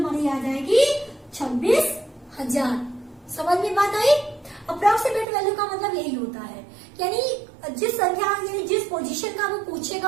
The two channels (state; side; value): drops out; left; at 5.2 s